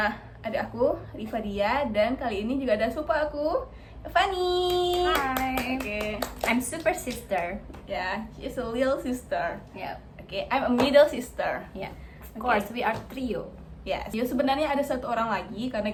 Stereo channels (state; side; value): identical; both; correlation 1.00